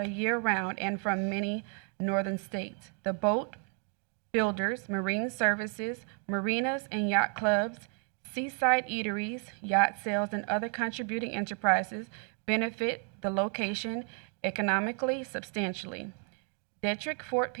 year-round and from many northern states. The boat builders, marine services, marinas and yacht clubs, seaside eateries, yacht sales, and other contributing enterprises benefit the location economically substantially. Detrick Fort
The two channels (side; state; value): left; quieter; 39.8 dB